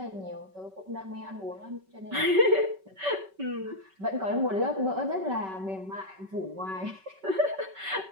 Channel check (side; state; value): left; late; 5.2 ms